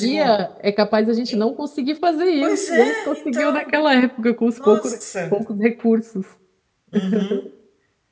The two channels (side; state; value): both; identical; correlation 1.00